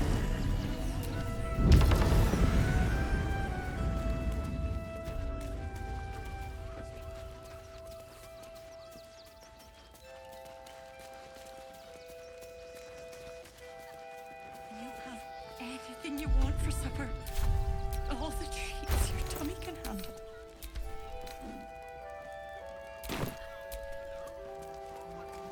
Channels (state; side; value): identical; both; correlation 1.00